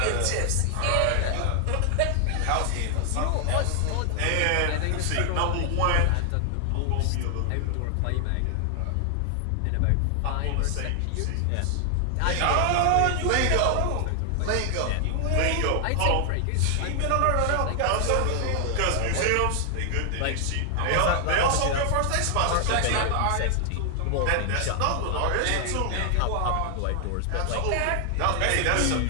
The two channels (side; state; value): both; different; correlation 0.00